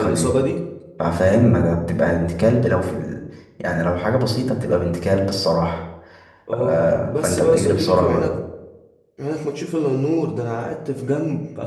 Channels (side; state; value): both; identical; correlation 1.00